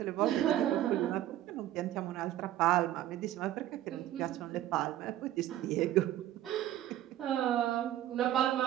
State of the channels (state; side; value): quieter; left; 13.1 dB